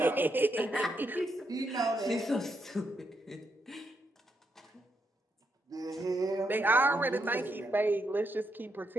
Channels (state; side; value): normal; both; correlation 0.80